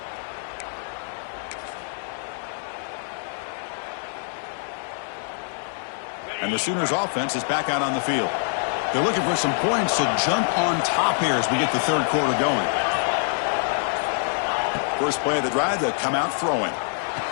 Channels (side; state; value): right; silent; 58 dB below the other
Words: And the Sooners offense is back out on the field. They're looking for some points to jump on top here as we get the third quarter going. First play of the drive, they'll come out throwing.